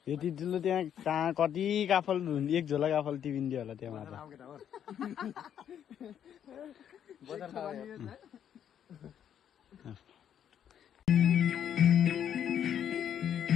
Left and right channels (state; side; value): quieter; right; 9.3 dB